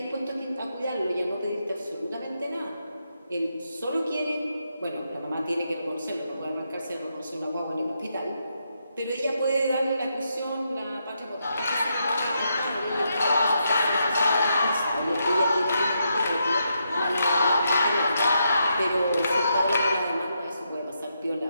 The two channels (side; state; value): both; inverted; correlation -0.80